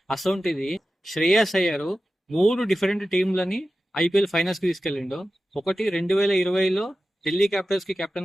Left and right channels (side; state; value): both; normal; correlation 0.93